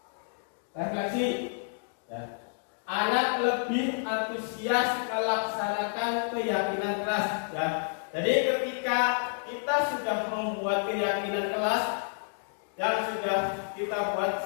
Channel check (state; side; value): silent; right; digital silence